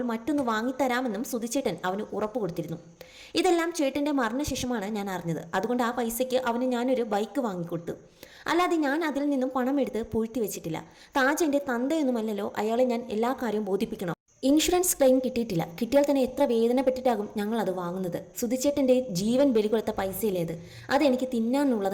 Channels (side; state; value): both; identical; correlation 1.00